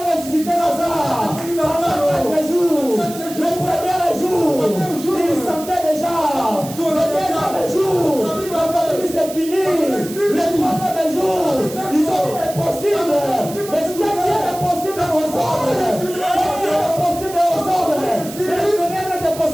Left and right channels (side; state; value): right; noise; hiss, 14 dB below the sound